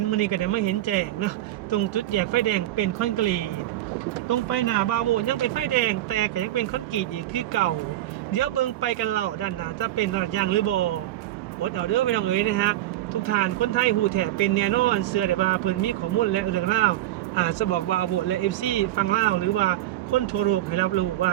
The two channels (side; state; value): left; quieter; 14.4 dB